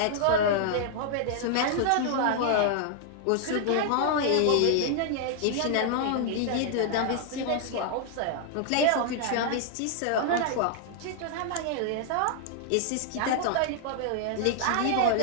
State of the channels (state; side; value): different; both; correlation -0.01